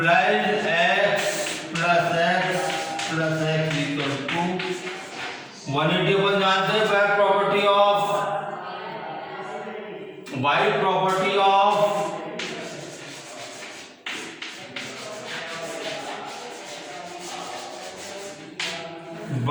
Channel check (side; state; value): both; identical; correlation 1.00